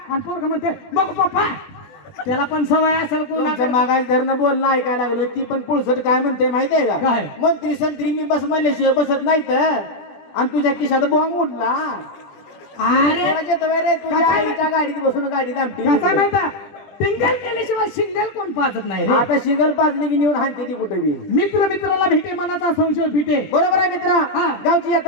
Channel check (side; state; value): right; late; 20 ms